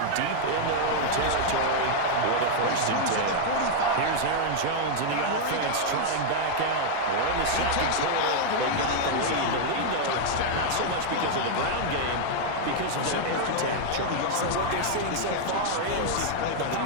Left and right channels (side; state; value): both; different; correlation -0.01